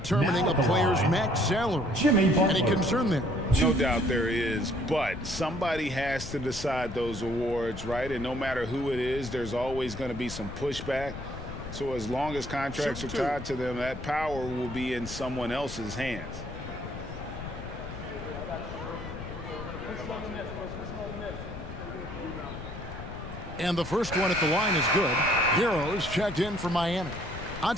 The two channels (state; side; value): noise; left; rumble, 10 dB below the sound